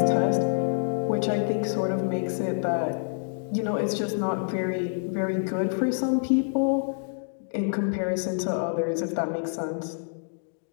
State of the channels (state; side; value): silent; right; digital silence